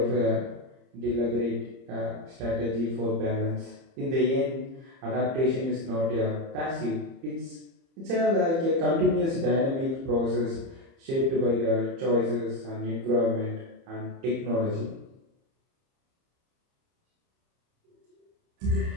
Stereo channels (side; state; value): left; late; 30 ms